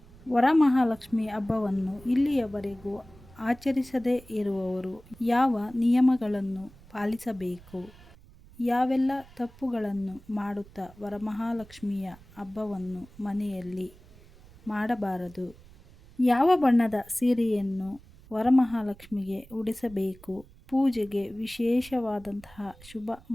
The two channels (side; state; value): right; noise; rumble, 23 dB below the sound